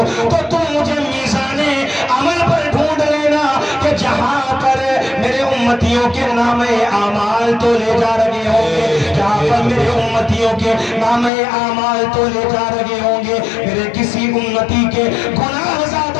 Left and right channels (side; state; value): right; drops out; at 11.3 s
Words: تو تم مجھے میزان عمل پر ڈھونڈ لینا کہ جہاں پر میرے امتیوں کے نام اعمال تو لے جا رہے ہوں گے، جہاں پر میرے امتیوں کے نام اعمال تو لے جا رہے ہوں گے، میرے کسی امتی کے گناہ